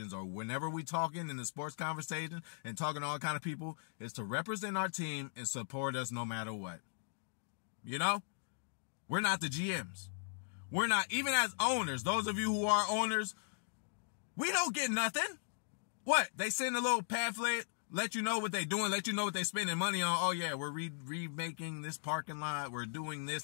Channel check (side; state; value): right; silent; digital silence